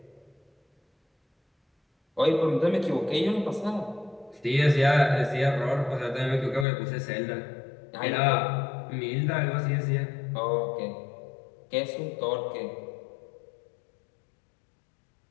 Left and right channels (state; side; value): drops out; right; at 6.7 s